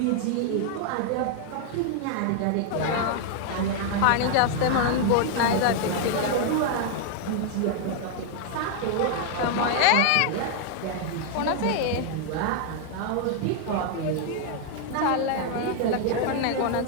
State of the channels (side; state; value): both; different; correlation 0.00